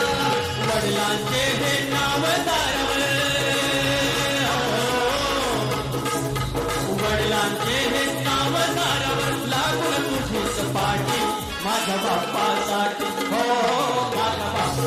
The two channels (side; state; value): both; identical; correlation 1.00